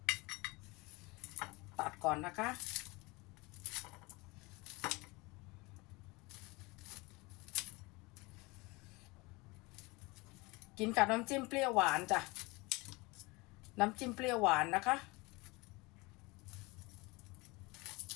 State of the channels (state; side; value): quieter; right; 24.7 dB